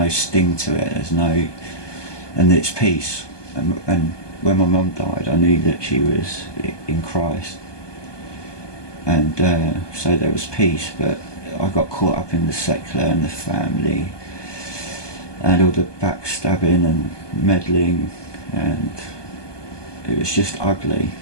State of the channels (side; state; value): right; late; 1.2 ms